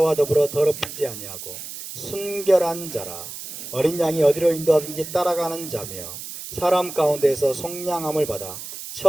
더불어 더럽히지 아니하고 순결한 자라. 어린 양이 어디로 인도하든지 따라가는 자며 사람 가운데에서 속량함을 받아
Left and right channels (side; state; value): right; noise; hiss, 10 dB below the sound